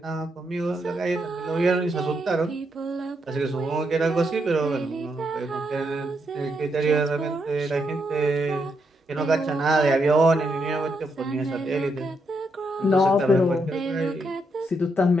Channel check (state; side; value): normal; both; correlation 0.80